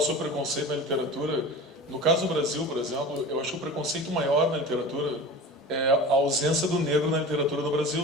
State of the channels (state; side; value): normal; both; correlation 0.35